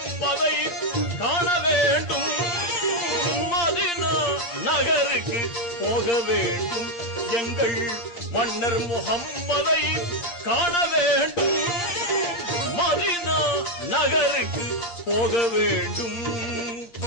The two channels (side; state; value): right; late; 8.7 ms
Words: காண வேண்டும். மதீனா நகருக்கு போக வேண்டும், எங்கள் மன்னர் முஹம்மதை காண வேண்டும். மதீனா நகருக்கு போக வேண்டும்.